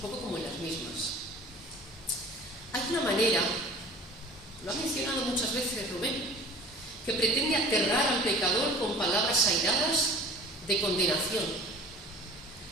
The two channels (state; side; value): normal; both; correlation 0.44